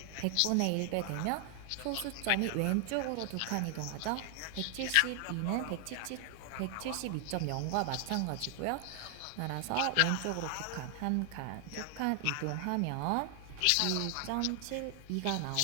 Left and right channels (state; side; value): different; both; correlation 0.00